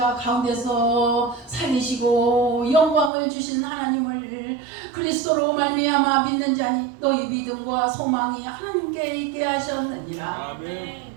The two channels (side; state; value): left; drops out; at 3.1 s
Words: 가운데서 살리시고 영광을 주신 하나님을 그리스도로 말미암아 믿는 자니 너희 믿음과 소망이 하나님께 있게 하셨느니라. 아멘.